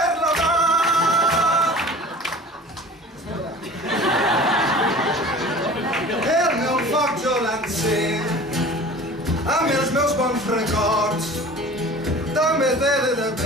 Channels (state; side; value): normal; both; correlation 0.42